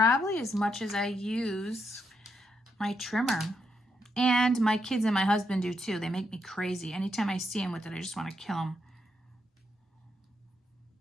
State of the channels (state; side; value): normal; both; correlation 0.80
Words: as much as I use my trimmer. And my kids and my husband do too. They make me crazy. Anytime I see them with it, I just want to kill them.